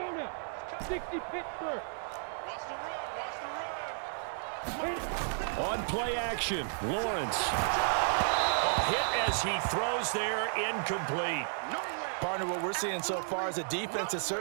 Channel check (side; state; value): left; silent; digital silence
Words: 60 Pittsburgh. Watch the run, watch the run. On play action, Lawrence. Hit as he throws there, incomplete. Partner, what we're seeing so far is the defense is